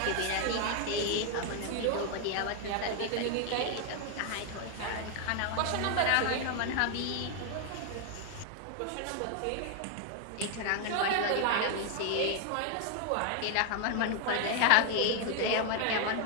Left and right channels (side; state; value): both; different; correlation 0.00